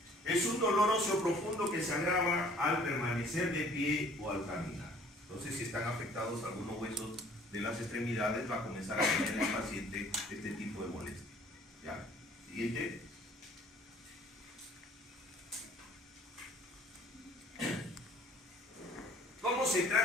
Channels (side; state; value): both; normal; correlation 0.55